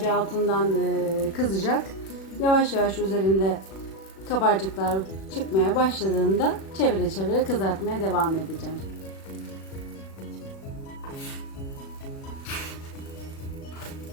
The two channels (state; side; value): late; right; 36 ms